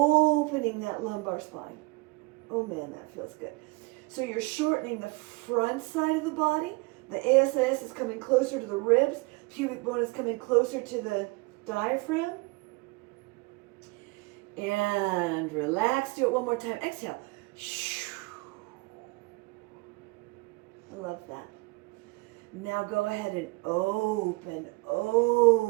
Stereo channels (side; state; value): left; quieter; 25.6 dB